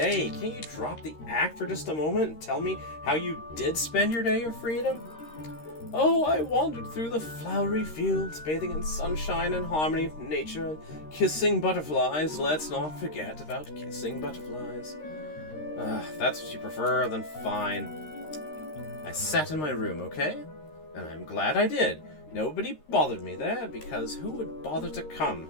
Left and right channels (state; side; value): late; right; 13 ms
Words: Can't you drop the act for just a moment and tell me how you did spend your day of freedom? Oh, I wandered through the flowery fields, bathing in sunshine and harmony of nature, and kissing butterflies. Let's not forget about kissing butterflies. If that's what you prefer, then fine. I sat in my room, okay? And I'm glad I did. Nobody bothered me there, because who would bother to come?